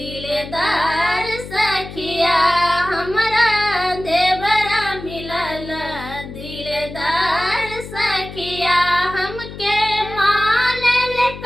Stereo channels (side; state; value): left; noise; hum, 12 dB below the sound